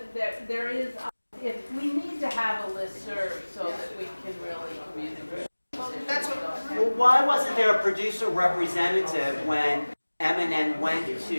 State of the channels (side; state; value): both; inverted; correlation -1.00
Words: that there is, if we need to have a listserv so that we can really communicate. that's what, Well, why wasn't there a producer representative when M&N went